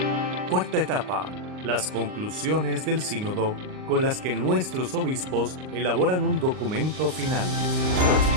Cuarta etapa. Las conclusiones del sínodo con las que nuestros obispos elaboran un documento final.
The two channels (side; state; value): left; late; 38 ms